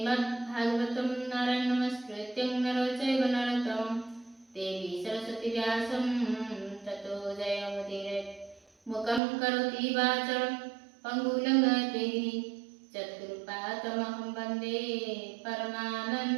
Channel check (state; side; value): drops out; left; at 9.2 s